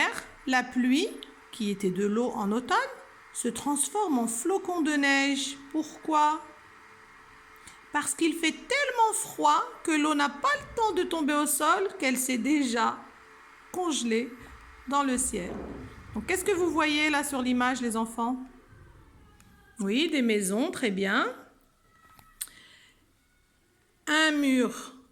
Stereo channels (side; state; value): both; identical; correlation 1.00